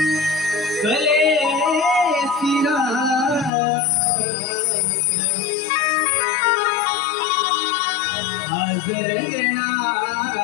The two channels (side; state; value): right; drops out; at 3.5 s